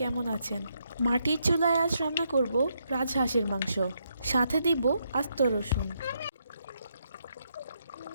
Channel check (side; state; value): both; inverted; correlation -0.78